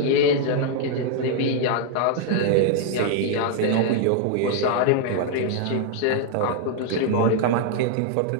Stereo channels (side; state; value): both; different; correlation 0.00